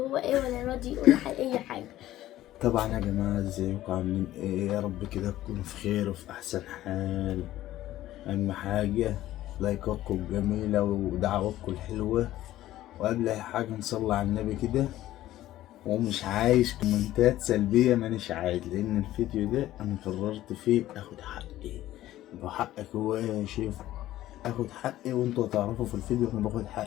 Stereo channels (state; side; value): quieter; right; 14.5 dB